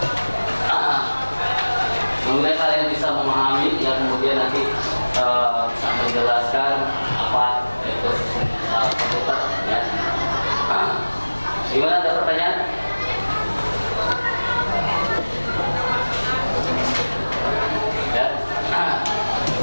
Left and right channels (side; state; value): both; inverted; correlation -1.00